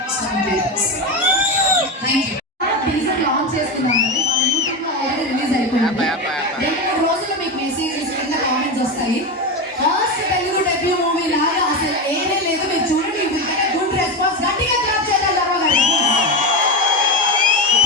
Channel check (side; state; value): both; normal; correlation 0.16